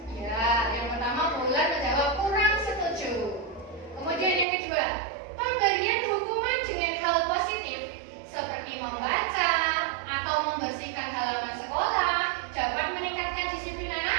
Ya, yang pertama Bulan menjawab kurang setuju. Kemudian yang kedua, pemberian hukuman dengan hal positif seperti membaca atau membersihkan halaman sekolah dapat meningkatkan disiplin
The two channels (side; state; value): left; drops out; at 4.5 s